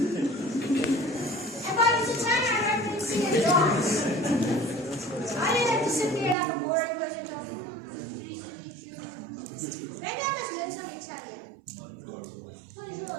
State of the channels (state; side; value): drops out; left; at 6.4 s